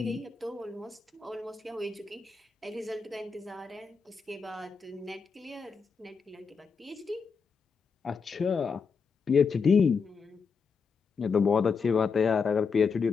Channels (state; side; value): quieter; right; 5.4 dB